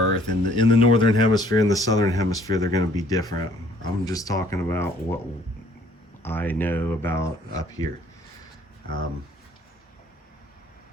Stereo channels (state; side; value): normal; both; correlation 0.59